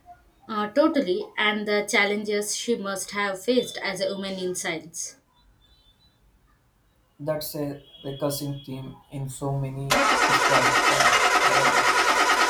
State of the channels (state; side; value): identical; both; correlation 1.00